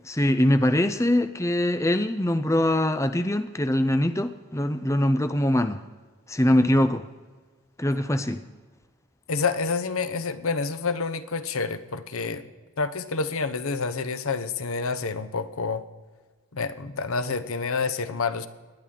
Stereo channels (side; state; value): both; normal; correlation 0.60